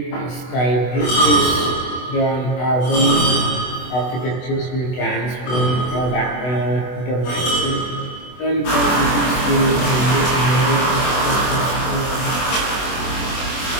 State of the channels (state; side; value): late; right; 24 ms